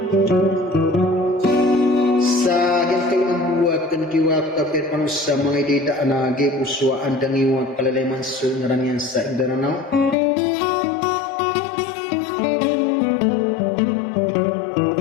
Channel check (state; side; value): drops out; right; at 10.2 s